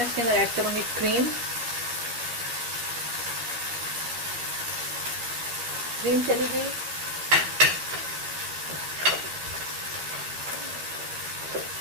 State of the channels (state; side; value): late; left; 12 ms